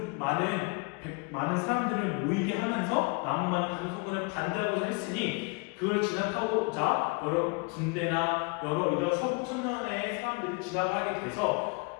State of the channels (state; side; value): quieter; right; 30.9 dB